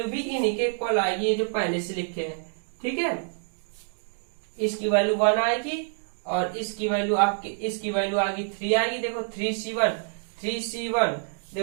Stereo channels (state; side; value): silent; left; 60 dB below the other